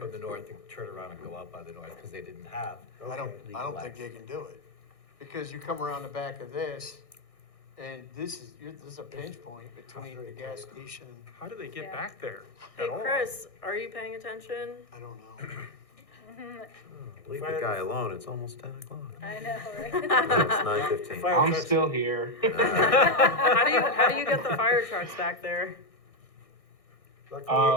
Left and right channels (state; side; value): late; right; 1.6 ms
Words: the north and turn around and go out by the north, because they didn't have. I don't think they can do it, because you come around the back of this, and this is a pinch point between the gas station, How do they get Yeah. back there Hey, at all? Chris, are you paying attention? I don't know. Leave the guy alone, it's almost 10 o'clock. I know, right? It's 9:15. Fire I'm trucks- still here. How do you get the fire trucks back there?